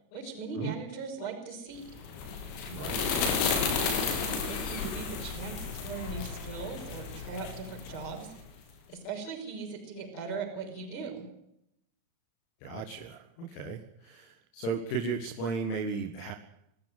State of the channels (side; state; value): right; late; 35 ms